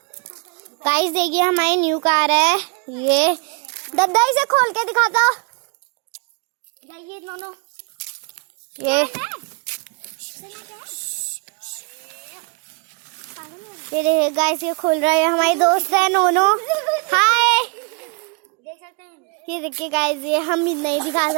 गाइस देखिए हमारी न्यू कार है ये। दद्दा इसे खोल के दिखा दो। ये दोनों ये देखिए गाइस ये खोल रहा है, हमारी दोस्त है नोनो। हाय देख सकते हैं। ये देखिए गाइस ये हम भी नहीं दिखा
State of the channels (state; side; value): quieter; left; 35.8 dB